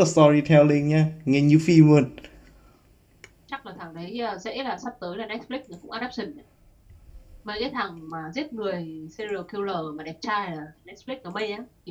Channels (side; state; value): both; identical; correlation 1.00